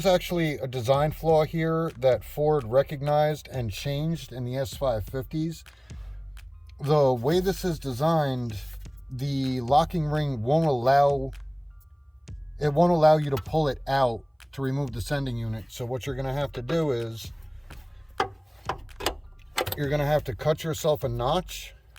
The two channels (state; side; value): identical; both; correlation 1.00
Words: actually a design flaw here that Ford recognized and changed in the S550s. The way this is designed, the locking ring won't allow you to pull it out to remove the sending unit. So what you're going to have to do is you're going to have to cut yourself a notch.